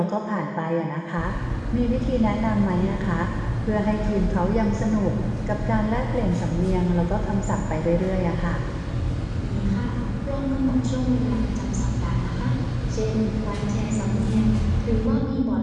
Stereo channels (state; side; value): identical; both; correlation 1.00